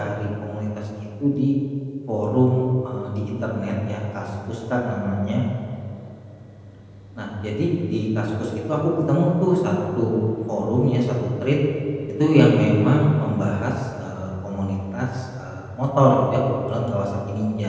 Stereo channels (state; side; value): identical; both; correlation 1.00